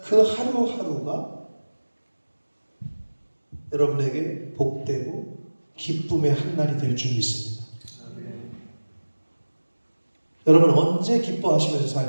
그 하루하루가 여러분에게 복되고 기쁨의 한날이 될 줄 믿습니다. 여러분 언제 기뻐하시면서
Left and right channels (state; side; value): inverted; both; correlation -1.00